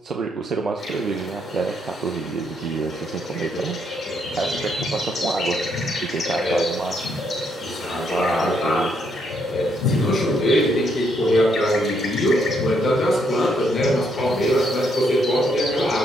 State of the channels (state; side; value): normal; both; correlation 0.74